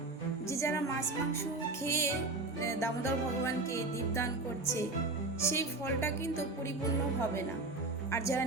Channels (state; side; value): quieter; left; 3.1 dB